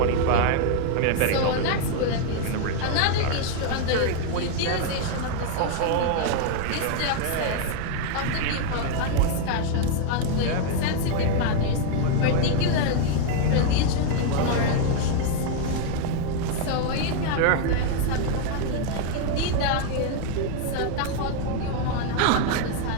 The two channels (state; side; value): different; both; correlation 0.00